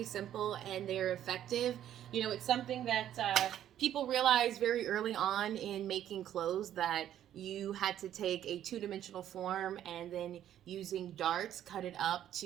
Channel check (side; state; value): left; quieter; 11.2 dB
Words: simple and they're effective. You know, it's something that people realize very early on in making clothes, that you had to take a two-dimensional form and then using darts cut it up